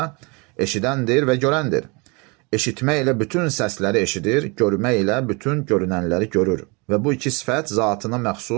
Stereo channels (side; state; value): left; quieter; 29.4 dB